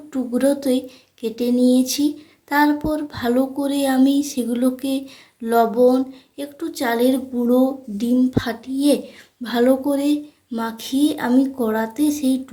টুকরোতে কেটে নিয়েছি। তারপর ভালো করে আমি সেগুলোকে লবণ, একটু চালের গুঁড়ো, ডিম ফাটিয়ে ভালো করে মাখিয়ে আমি কড়াতে সেই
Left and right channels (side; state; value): both; identical; correlation 1.00